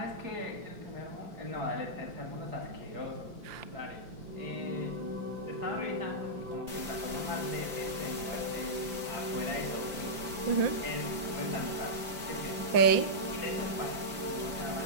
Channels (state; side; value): late; left; 5.0 ms